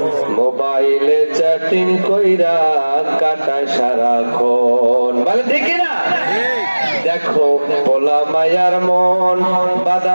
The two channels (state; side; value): inverted; both; correlation -1.00